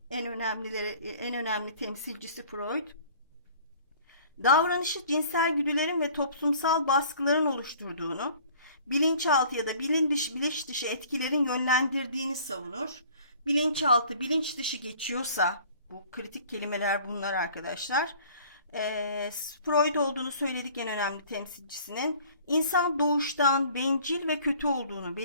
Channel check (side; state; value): both; inverted; correlation -0.51